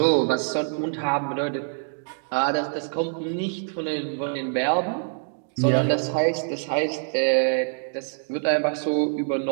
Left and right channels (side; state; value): left; silent; digital silence